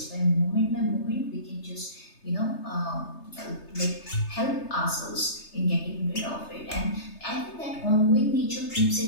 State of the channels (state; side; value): late; right; 3.3 ms